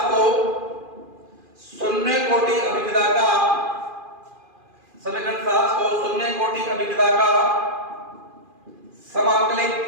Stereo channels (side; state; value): left; late; 2.4 ms